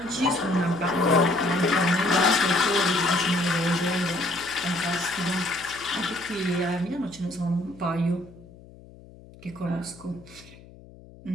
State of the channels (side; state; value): left; noise; hum, 21 dB below the sound